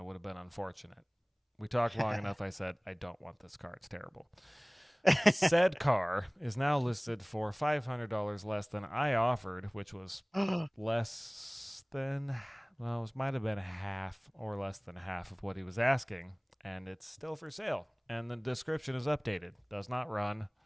would have been unfortunate. We talked long enough. I said, I don't want this car. It's terrible. Said car is now listed for $500 less than I offered, which was less than, well, it might have been half or less than half of what he was asking. And it's still for sale. And the description is updated. Does not run.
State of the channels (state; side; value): identical; both; correlation 1.00